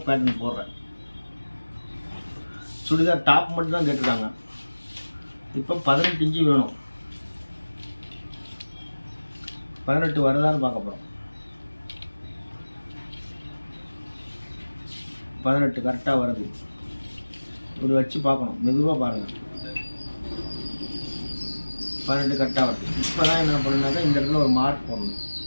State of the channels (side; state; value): both; inverted; correlation -1.00